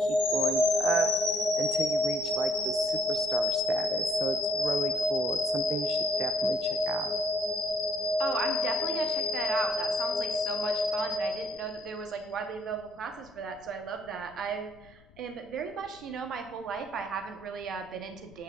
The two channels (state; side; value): noise; left; rumble, 26 dB below the sound